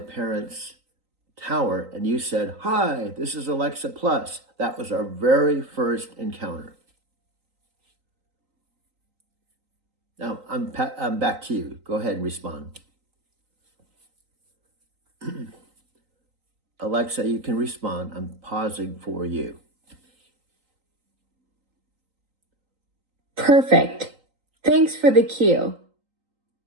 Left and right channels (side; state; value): left; late; 3.9 ms